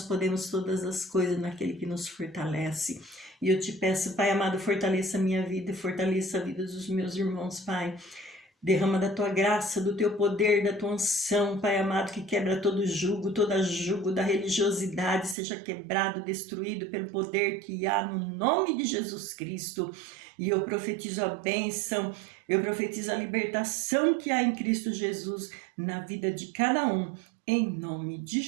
podemos todas as coisas naquele que nos fortalece. E eu te peço, Pai amado, fortaleça a minha vida, fortaleça a vida dos meus irmãos, Pai. Derrama da tua graça, do teu poder, da tua unção, Pai amado, que quebra todo jugo, toda jugo da religiosidade, seja quebrado, destruído pelo poder que há no nome de Jesus Cristo. E eu profetizo a bênção, eu profetizo a libertação que há em Cristo Jesus na vida de cada um, em nome de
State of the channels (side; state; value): left; drops out; at 15.4 s